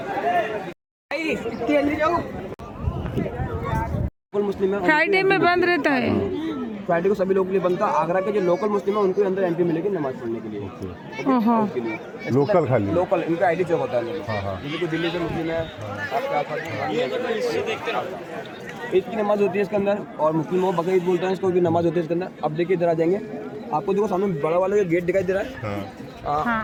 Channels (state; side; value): identical; both; correlation 1.00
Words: वो मुस्लिम है, फ्राइडे में बंद रहता है। फ्राइडे को सभी लोगों के लिए बनता है। आगरा के जो लोकल मुस्लिम है उनको अंदर एंट्री मिलेगी नमाज पढ़ने के लिए। लोकल खाली लोकल इनका आईडी चेक होता है। जैसे कोई दिल्ली से मुस्लिम है, आपके आसपास ईद की नमाज होती है इसके अंदर, और मुस्लिम वो बकरीद बोलते हैं, इसको भी नमाज होती है इसके अंदर। अब देखिए इधर आ जाएंगे, आपको देखो सामने बड़ा वाला गेट दिखाई दे रहा है।